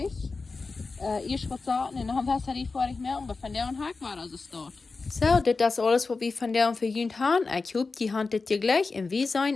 Erst was sagen, und dann Batterie fertig merken, aber von der und Hack war also dort. So, das ist alles, was wir von der und für Jünd haben. Ich hoffe, die handelt dir gleich und wir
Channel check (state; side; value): quieter; right; 4.1 dB